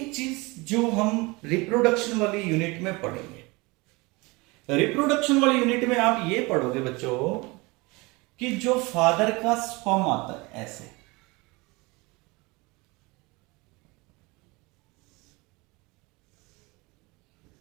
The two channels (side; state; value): left; quieter; 24.8 dB